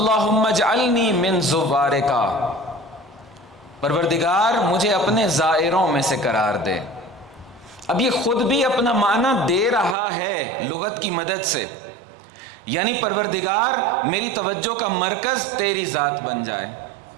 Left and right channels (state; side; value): drops out; left; at 10.0 s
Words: اجعلنی من زوارکا، پروردگار مجھے اپنے زائروں میں سے قرار دے. اب یہ خود بھی اپنا معنی دے رہا ہے لغت کی مدد سے، یعنی پروردگار میری توجہ کا مرکز تیری ذات بن جائے،